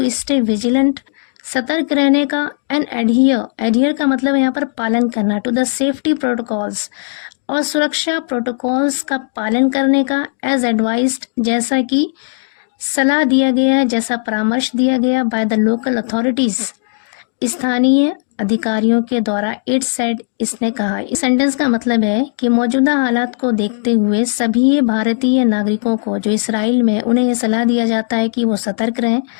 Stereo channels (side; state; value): right; silent; digital silence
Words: स्टे विजिलेंट, सतर्क रहने का, एंड एडहियर का मतलब है यहाँ पर पालन करना, टू द सेफ्टी प्रोटोकॉल्स और सुरक्षा प्रोटोकॉल्स का पालन करने का, एज एडवाइज्ड जैसा कि सलाह दिया गया है, जैसा परामर्श दिया गया, बाय द लोकल अथॉरिटीज स्थानीय अधिकारियों के द्वारा, इट सेड इसने कहा। इस सेंटेंस का मतलब है कि मौजूदा हालात को देखते हुए सभी भारतीय नागरिकों को जो इसराइल में, उन्हें यह सलाह दिया जाता है कि वो सतर्क रहें